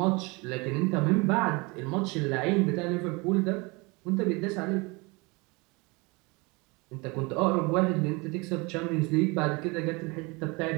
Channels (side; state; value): left; quieter; 26.8 dB